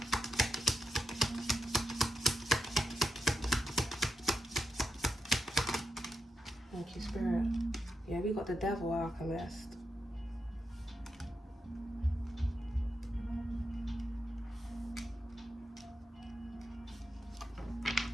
Thank you, Spirit. Yeah, we got the Devil, Alchemist.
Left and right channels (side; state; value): both; normal; correlation 0.86